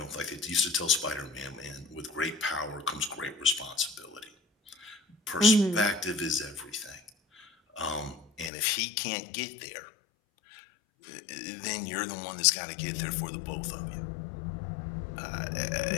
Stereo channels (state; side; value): drops out; right; at 8.5 s